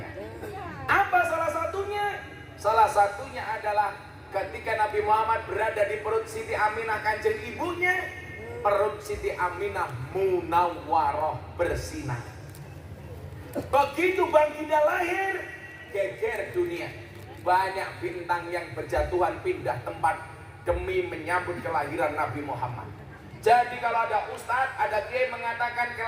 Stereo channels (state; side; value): identical; both; correlation 1.00